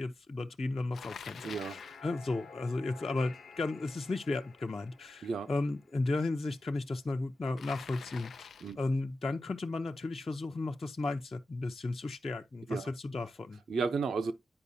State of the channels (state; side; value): normal; both; correlation 0.91